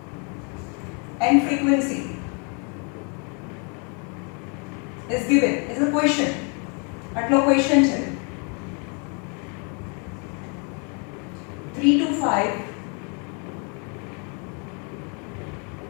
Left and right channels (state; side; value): quieter; right; 36.7 dB